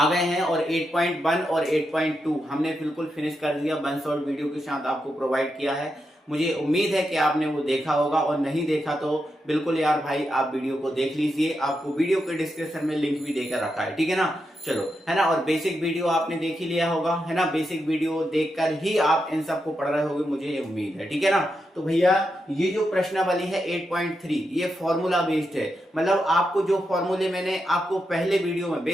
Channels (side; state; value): both; normal; correlation 0.85